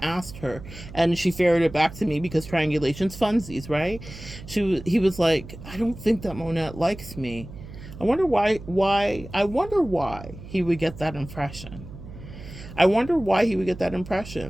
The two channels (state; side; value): noise; right; hum, 14 dB below the sound